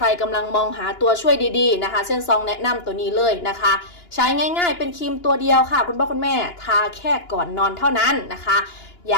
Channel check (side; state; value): right; late; 2.9 ms